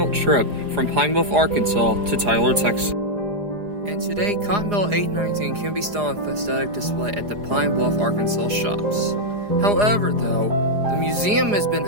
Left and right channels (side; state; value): left; late; 4.9 ms